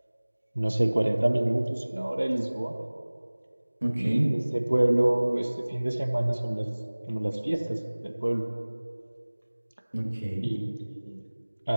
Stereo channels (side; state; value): both; inverted; correlation -1.00